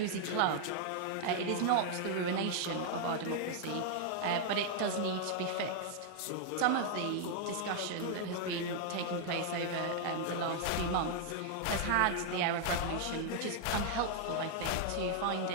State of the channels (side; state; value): both; different; correlation 0.00